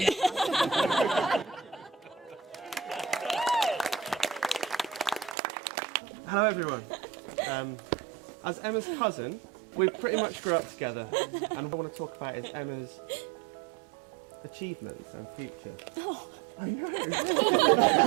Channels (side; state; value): left; drops out; at 5.4 s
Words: Hello everyone. As Emma's cousin, we pretty much grew up together, and what I want to talk about is Emma's achievements and future. Oh. I know.